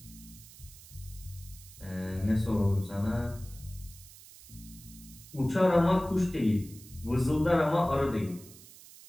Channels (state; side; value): noise; right; hiss, 19 dB below the sound